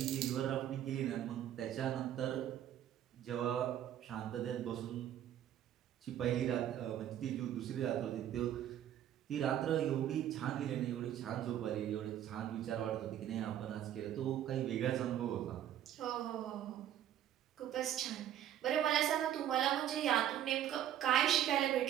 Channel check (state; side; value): quieter; left; 11.1 dB